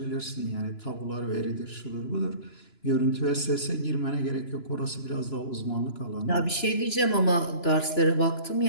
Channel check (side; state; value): right; late; 2.9 ms